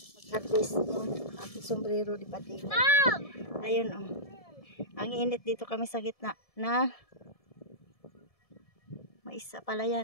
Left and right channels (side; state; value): right; late; 1.7 ms